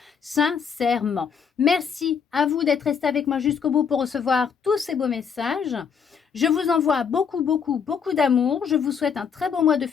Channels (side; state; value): right; quieter; 6.6 dB